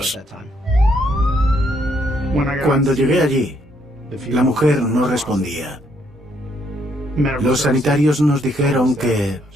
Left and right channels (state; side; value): normal; both; correlation 0.71